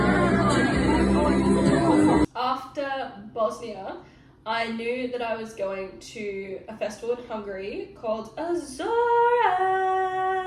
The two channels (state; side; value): identical; both; correlation 1.00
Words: After Bosnia, I knew that I was going to a festival in Hungary called Azora.